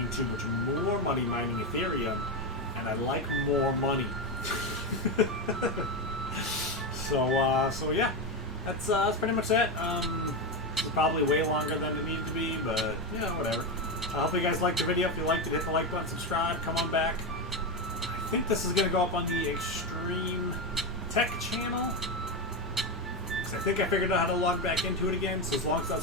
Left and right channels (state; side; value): normal; both; correlation 0.12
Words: too much more money mining Ethereum, and I like more money. So yeah, that's pretty much it. It's probably way longer than it needed to be, but whatever. I hope you guys liked the video. If you liked it, hit the like button, subscribe, come on back. I think this is going to go up on the Extreme Tech channel. Vlogs. I think I figured out how to log back into it again, so as long as it